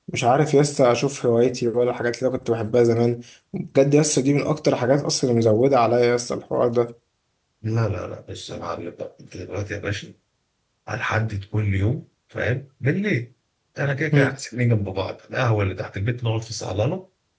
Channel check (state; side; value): identical; both; correlation 1.00